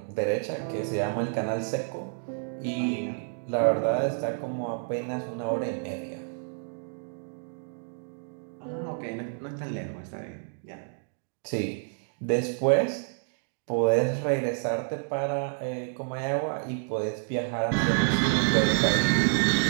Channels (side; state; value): left; silent; digital silence